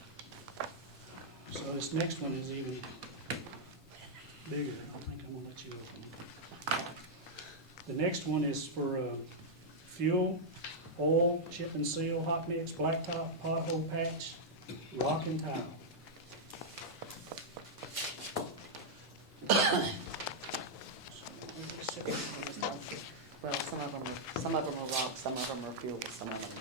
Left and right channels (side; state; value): both; normal; correlation -0.06